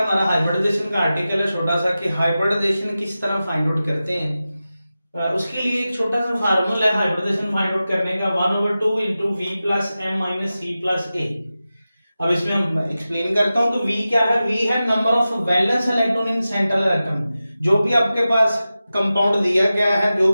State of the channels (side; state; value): both; inverted; correlation -0.94